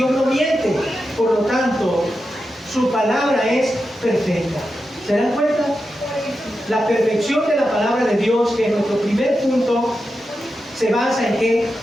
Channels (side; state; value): both; normal; correlation 0.89